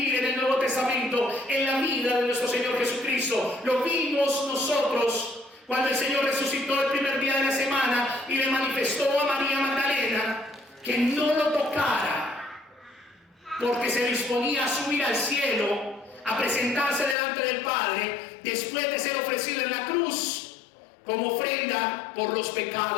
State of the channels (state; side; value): drops out; right; at 17.2 s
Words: en el Nuevo Testamento, en la vida de nuestro Señor Jesucristo. Lo vimos nosotros cuando el Señor resucitó el primer día de la semana y le manifestó a María Magdalena que no lo tocara, porque se disponía a subir al cielo, a presentarse delante del Padre, después de ser ofrecido en la cruz como ofrenda por los